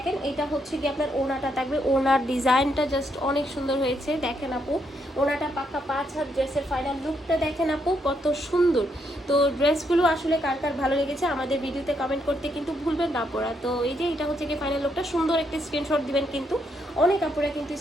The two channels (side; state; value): both; normal; correlation 0.76